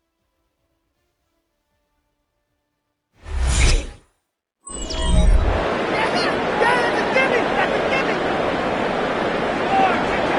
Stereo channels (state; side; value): identical; both; correlation 1.00